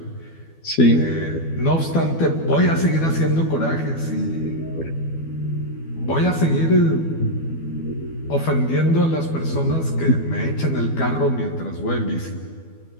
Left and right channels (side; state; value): right; late; 12 ms